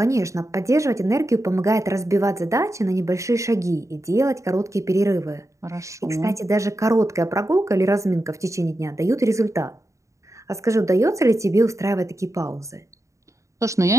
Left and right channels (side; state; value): left; late; 0.15 ms